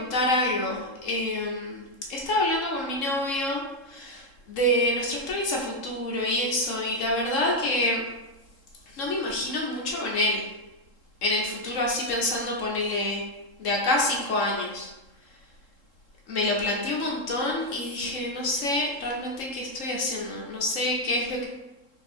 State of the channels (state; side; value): late; right; 3.7 ms